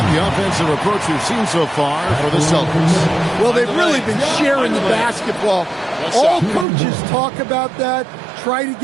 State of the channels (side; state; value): left; drops out; at 6.7 s